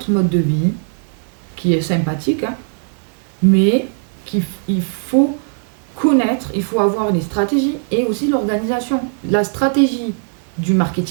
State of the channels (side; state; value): left; silent; digital silence